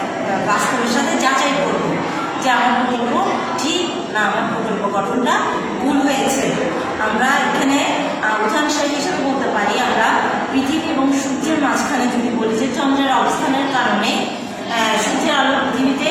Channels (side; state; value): both; identical; correlation 1.00